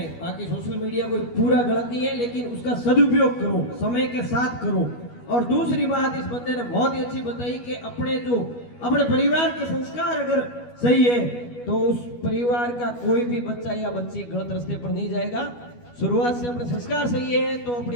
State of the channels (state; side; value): late; right; 12 ms